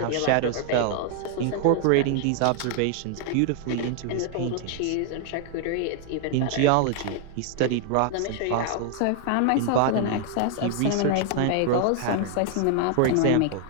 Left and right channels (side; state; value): both; different; correlation 0.00